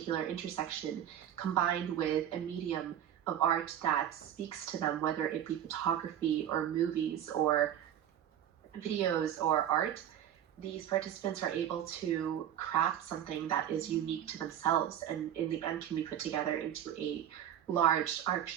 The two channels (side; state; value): left; quieter; 10.5 dB